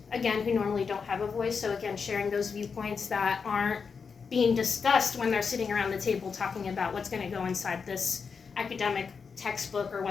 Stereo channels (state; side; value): quieter; right; 5.6 dB